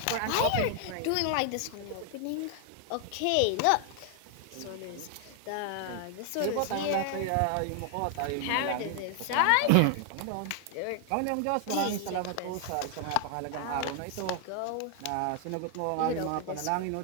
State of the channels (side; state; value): both; different; correlation 0.00